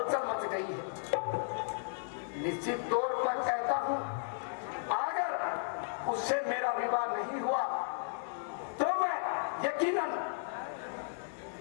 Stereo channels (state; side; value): silent; right; digital silence